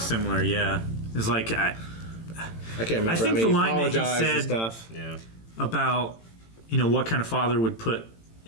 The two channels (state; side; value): late; right; 18 ms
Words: yeah. It's like, I can't remember. I think mean, the line that he apologized and said- stuff. Yeah. about, you know, what kind of father would put